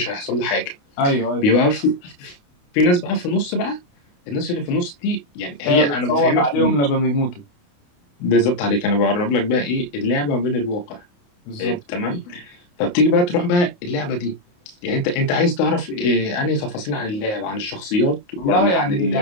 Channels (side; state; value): right; late; 28 ms